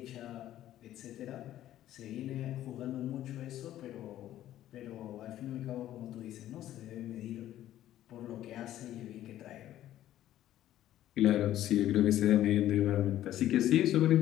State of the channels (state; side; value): quieter; right; 12.9 dB